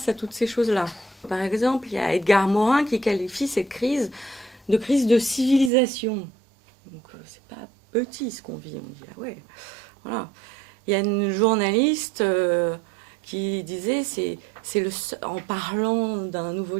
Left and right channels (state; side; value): drops out; left; at 5.7 s